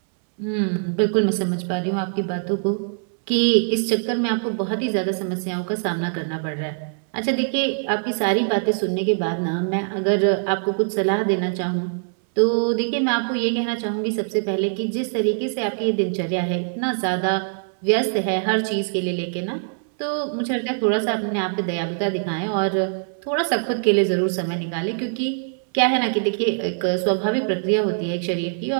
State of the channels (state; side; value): silent; left; 64 dB below the other